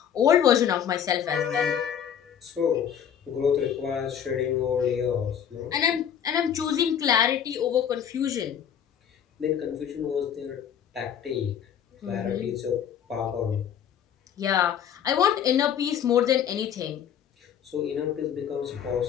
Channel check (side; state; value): right; quieter; 8.8 dB